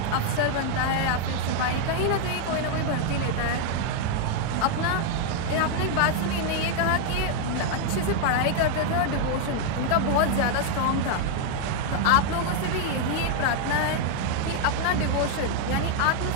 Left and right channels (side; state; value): both; different; correlation 0.00